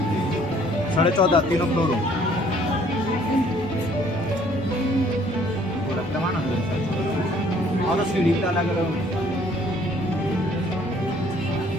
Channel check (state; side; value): normal; both; correlation 0.60